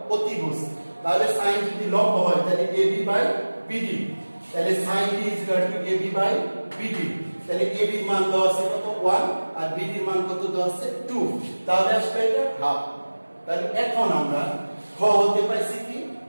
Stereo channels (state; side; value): inverted; both; correlation -1.00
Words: অতিভুজ। তাহলে sin যদি লম্ব হয় তাহলে ab বাই bd, তাহলে sin d is equal to ab by bd। তাহলে ab এর মান দেওয়া আছে কত? 1 আর bd এর মান কত দেওয়া আছে? 2। তাহলে আসবে এটা হাফ। তাহলে এখন আমরা খ হতে পাইছি কি